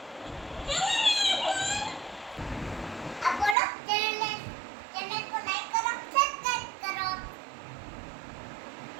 આ બોલો ચેનલ को लाइक करो सब्सक्राइब करो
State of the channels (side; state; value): left; drops out; at 3.6 s